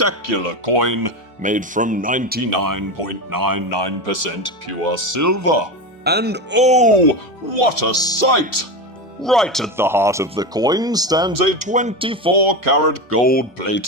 coin made from 99.99% pure silver. And oh, what a sight! Right at the heart of the coin stands a 24-karat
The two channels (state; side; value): normal; both; correlation 0.19